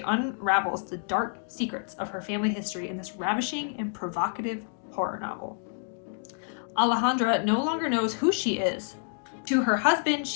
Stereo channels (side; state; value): right; silent; digital silence